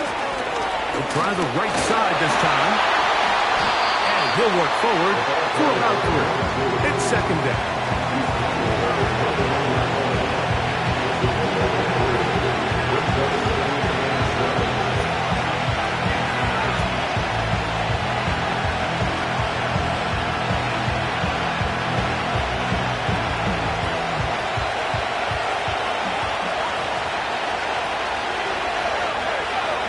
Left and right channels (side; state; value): both; identical; correlation 1.00